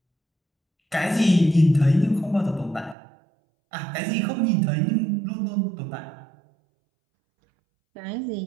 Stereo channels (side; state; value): left; drops out; at 3.0 s